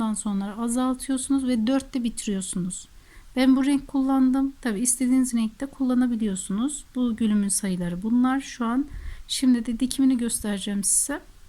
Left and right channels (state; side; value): identical; both; correlation 1.00